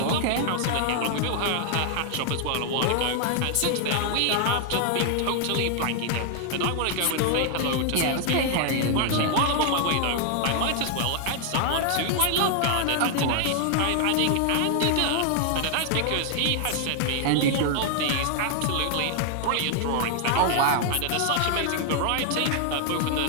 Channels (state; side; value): different; both; correlation 0.00